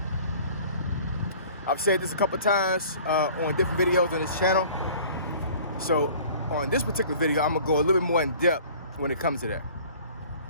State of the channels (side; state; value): both; inverted; correlation -0.48